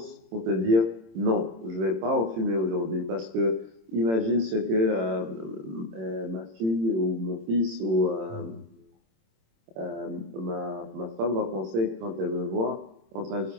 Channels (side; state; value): left; late; 26 ms